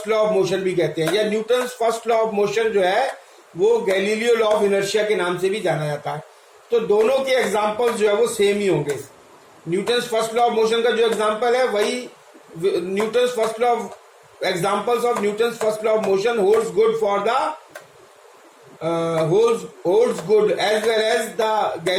law of motion भी कहते हैं, या Newton's first law of motion जो है वो गैलीलियो लॉ ऑफ इनर्शिया के नाम से भी जाना जाता है. तो दोनों के एग्जाम्पल्स जो है वो सेम ही होंगे. Newton's first law of motion का जो एग्जांपल है वही Newton's first law of examples of Newton's first law of motion holds good for the holds good as well as the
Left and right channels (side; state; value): both; identical; correlation 1.00